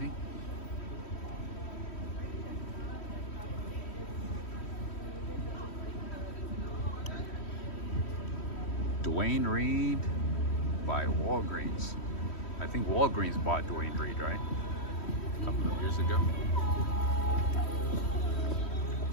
Dwayne Reed by Walgreens. I think Walgreens bought Dwayne Reed, right? A couple of years ago.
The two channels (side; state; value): right; late; 3.1 ms